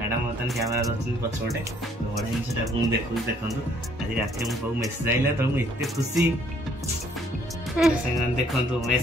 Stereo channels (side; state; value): both; normal; correlation 0.64